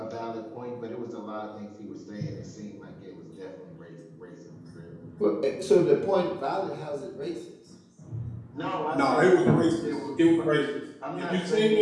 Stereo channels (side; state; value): both; identical; correlation 1.00